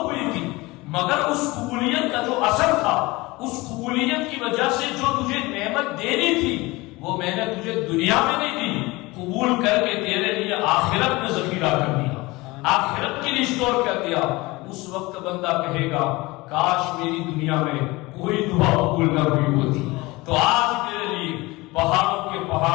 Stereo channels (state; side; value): quieter; right; 22.0 dB